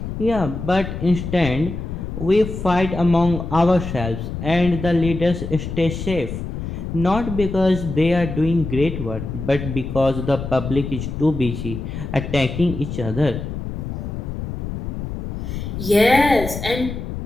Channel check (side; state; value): left; noise; rumble, 6 dB below the sound